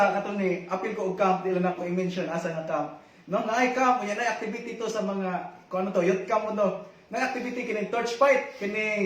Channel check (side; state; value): both; identical; correlation 1.00